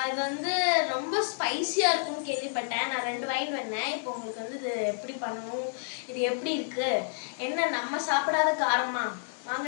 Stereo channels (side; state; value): right; silent; digital silence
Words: அது ரொம்ப ஸ்பைசியா இருக்கும்னு கேள்விப்பட்டேன். நான் 2 வாங்கிட்டு வந்தேன். இப்போ உங்களுக்கு இது எப்படி பண்ணணும், இது எப்படி இருக்கு, என்ன நம்ம சாப்பிடாத காரமா,